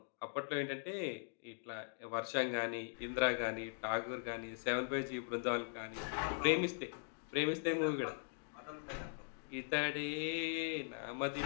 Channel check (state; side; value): silent; right; digital silence